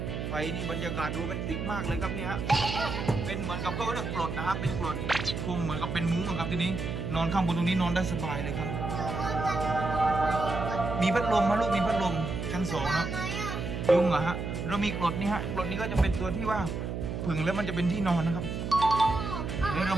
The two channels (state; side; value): noise; right; hum, 4 dB below the sound